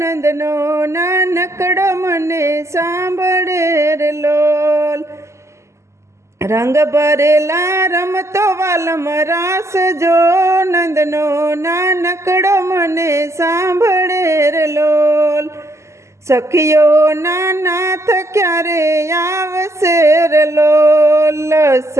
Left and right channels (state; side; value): late; left; 0.13 ms